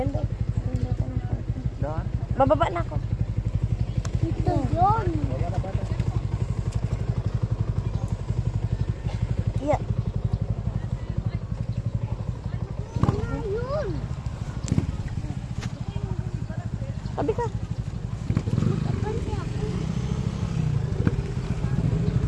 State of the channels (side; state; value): both; identical; correlation 1.00